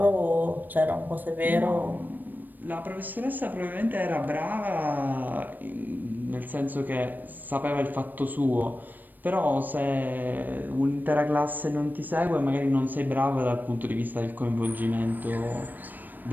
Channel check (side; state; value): left; late; 0.089 ms